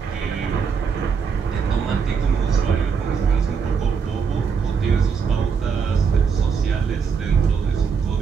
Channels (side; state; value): left; quieter; 6.1 dB